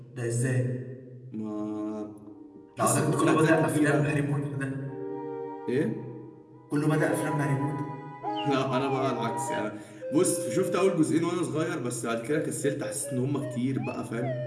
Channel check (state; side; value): identical; both; correlation 1.00